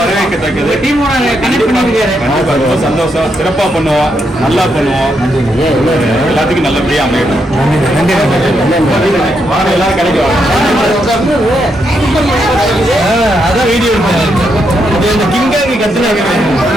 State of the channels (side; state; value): both; normal; correlation 0.80